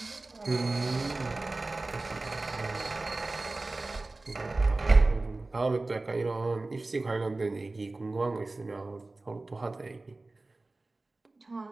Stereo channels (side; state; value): left; quieter; 3.1 dB